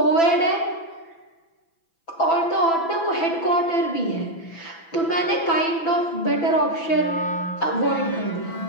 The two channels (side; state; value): right; late; 6.0 ms